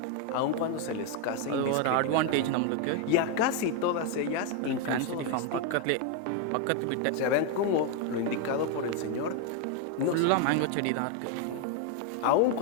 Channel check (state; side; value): different; both; correlation 0.01